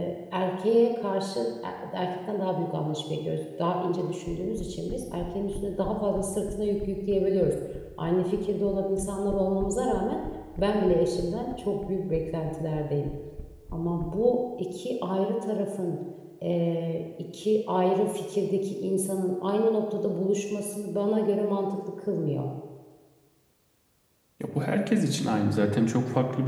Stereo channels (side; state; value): both; identical; correlation 1.00